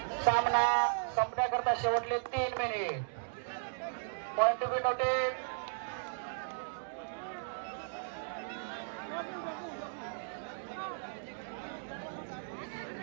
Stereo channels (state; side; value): silent; left; digital silence